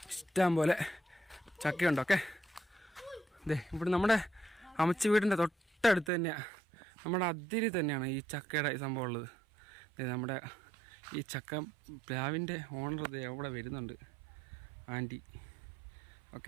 ഇഷ്ടം പോലെ ചക്കയുണ്ട്. ഓക്കെ, ഇതേ ഇവിടെ നമ്മുടെ അമ്മച്ചി വീടിൻ്റെ തൊട്ടടുത്ത് തന്നെയാണ്, നമ്മുടെ അതിരി തന്നെയാണ് ഈ ചക്കയുടെ സംഭവം ഉള്ളത്. നമ്മുടെ ഈ ചക്ക പ്ലാവിൻ്റെ ഓണർ ഇത് അവിടെ വരുന്നുണ്ട്, ആൻറ്റി.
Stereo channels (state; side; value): drops out; left; at 6.1 s